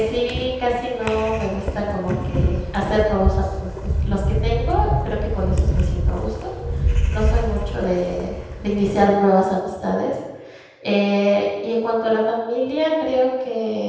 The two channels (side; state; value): both; identical; correlation 1.00